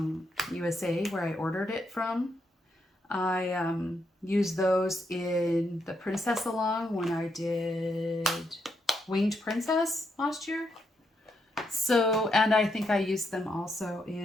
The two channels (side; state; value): both; normal; correlation 0.79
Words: USA, where I ordered it from. I used those in the Princess Along when I did Winged Princess last year. So, and I think I used them also